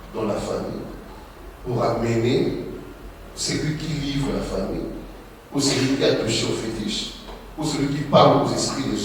dans la famille pour amener celui qui livre la famille, ou celui qui a touché au fétiche, ou celui qui parle aux esprits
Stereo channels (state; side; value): identical; both; correlation 1.00